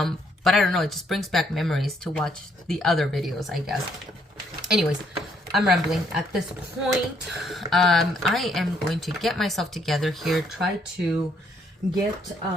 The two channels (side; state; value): both; normal; correlation 0.69